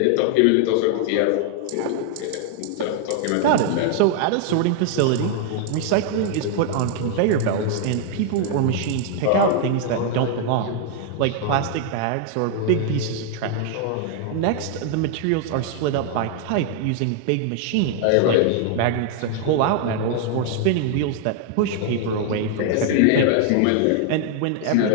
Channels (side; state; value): both; different; correlation 0.00